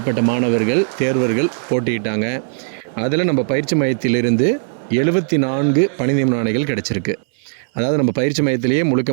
மாணவர்கள் தேர்வர்கள் போட்டியிட்டாங்க. அதில் நம்ம பயிற்சி மையத்திலிருந்து 74 பணி நியமன ஆணைகள் கிடச்சிருக்கு. அதாவது நம்ம பயிற்சி மையத்திலேயே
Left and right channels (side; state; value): left; silent; digital silence